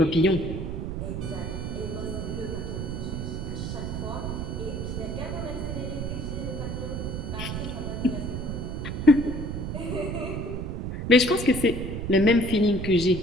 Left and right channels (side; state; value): right; noise; rumble, 4 dB below the sound